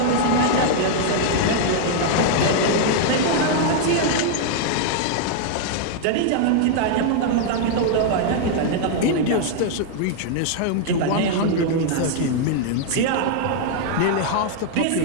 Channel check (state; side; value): different; both; correlation -0.01